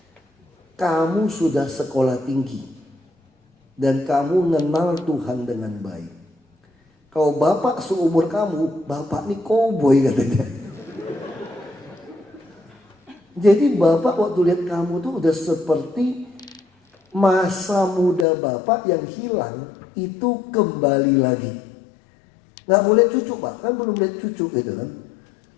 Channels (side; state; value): right; drops out; at 18.2 s